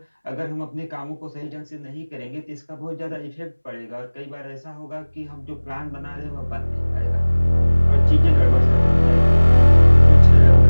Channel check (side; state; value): both; inverted; correlation -1.00